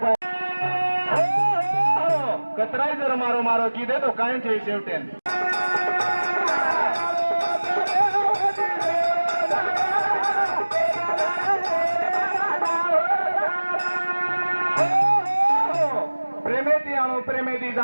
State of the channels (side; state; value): both; inverted; correlation -1.00